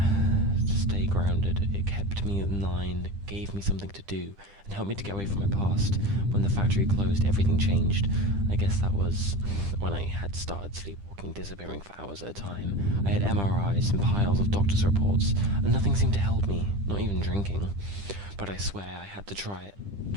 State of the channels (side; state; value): left; late; 10 ms